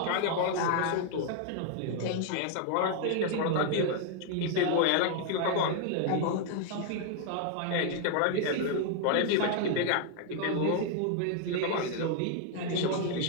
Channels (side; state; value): both; different; correlation 0.00